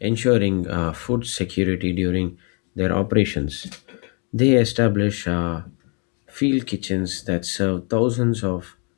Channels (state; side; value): quieter; right; 36.2 dB